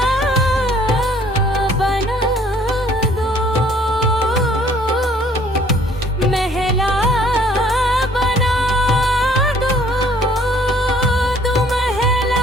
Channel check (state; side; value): normal; both; correlation 0.58